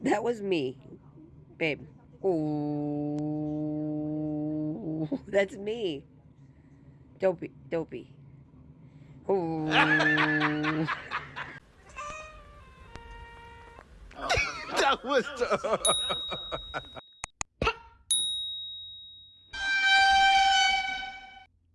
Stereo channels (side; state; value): both; identical; correlation 1.00